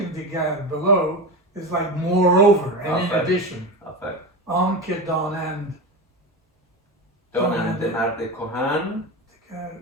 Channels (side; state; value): both; normal; correlation 0.22